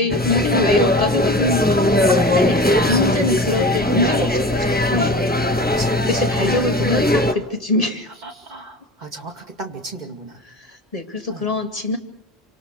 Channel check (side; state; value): both; normal; correlation 0.34